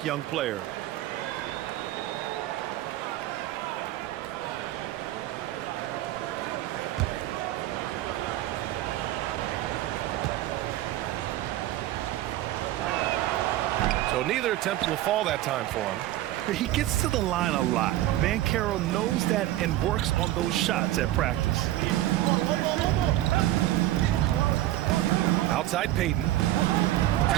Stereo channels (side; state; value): left; quieter; 14.8 dB